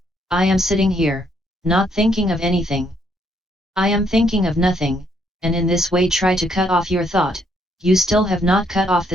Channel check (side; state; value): both; normal; correlation 0.71